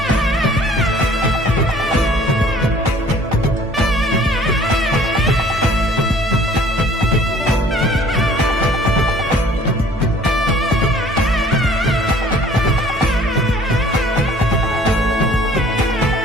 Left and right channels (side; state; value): both; normal; correlation 0.53